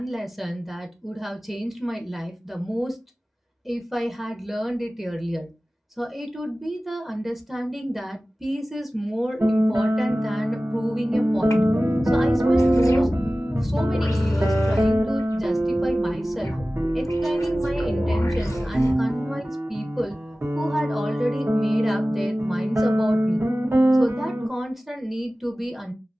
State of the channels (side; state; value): both; normal; correlation 0.97